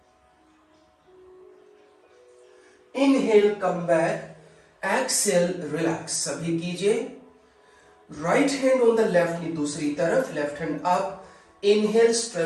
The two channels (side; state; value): both; identical; correlation 1.00